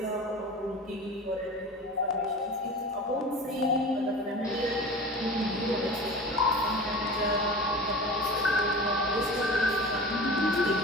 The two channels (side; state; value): both; normal; correlation 0.35